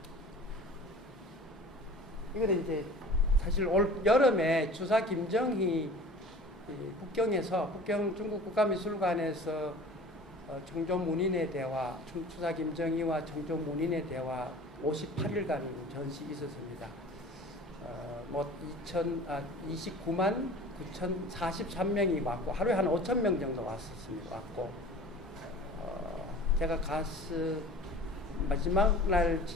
이거는 이제 사실 올 여름에 주사 김정희 북경 중국 국가미술관에서 청조문인의 대화, 주사 김정희와 청조문인의 대화 58일간 전시 있었습니다. 29만 9,043명이 왔고 하루에 한 5,000명 정도 왔었습니다. 왔고 제가 마지막 날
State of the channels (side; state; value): both; normal; correlation 0.42